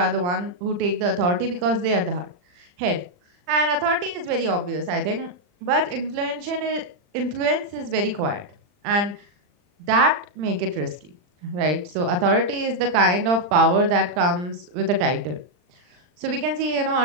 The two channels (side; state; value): left; late; 40 ms